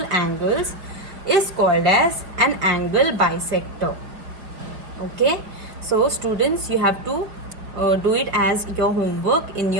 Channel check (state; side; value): late; left; 5.1 ms